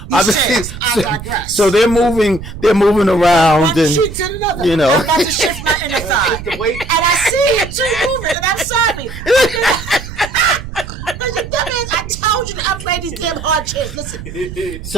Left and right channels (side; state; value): right; noise; rumble, 11 dB below the sound